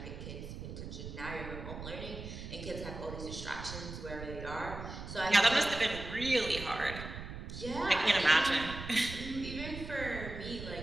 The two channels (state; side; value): noise; right; rumble, 9 dB below the sound